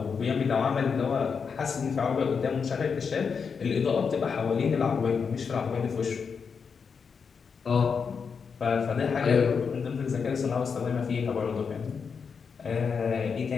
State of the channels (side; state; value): right; quieter; 5.9 dB